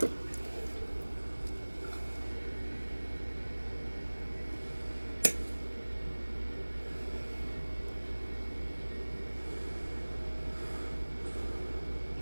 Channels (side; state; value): both; inverted; correlation -1.00